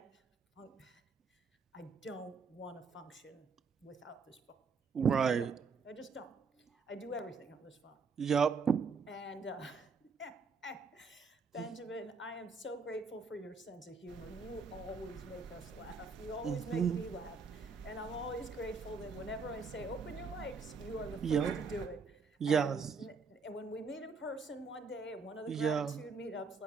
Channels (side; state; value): left; quieter; 4.9 dB